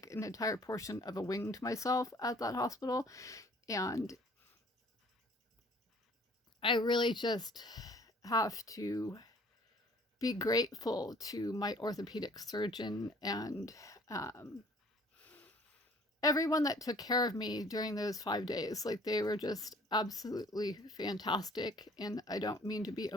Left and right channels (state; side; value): normal; both; correlation 0.55